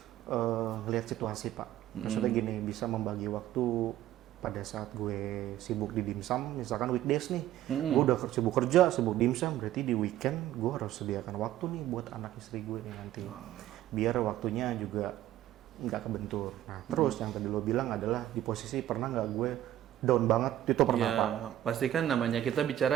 ngelihat situasi Pak. Maksudnya gini, bisa membagi waktu pada saat gue sibuk di dimsum, misalkan weekdays nih, gue udah sibuk kerja, sibuk dimsum, berarti di weekend gue harus sediakan waktu nih buat anak istri gue nih nanti, biar waktunya juga nggak kebentur. Nah terus yang tadi lo bilang adalah di posisi pernah nggak gue down banget, itu pernah Pak. Pasti kan namanya kita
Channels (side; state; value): left; quieter; 13.0 dB